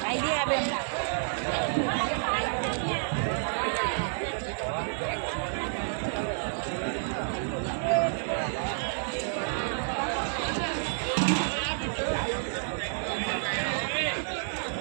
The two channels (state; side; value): silent; left; digital silence